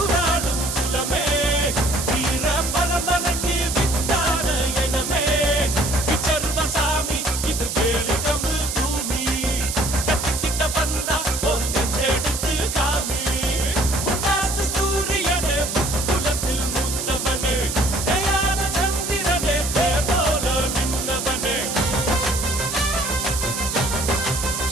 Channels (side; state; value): right; noise; hiss, 4 dB below the sound